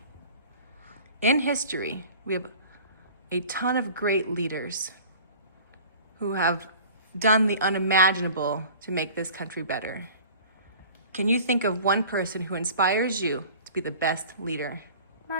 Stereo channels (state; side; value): inverted; both; correlation -0.43